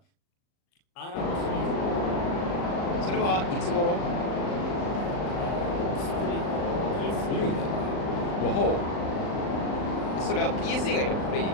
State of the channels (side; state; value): right; late; 39 ms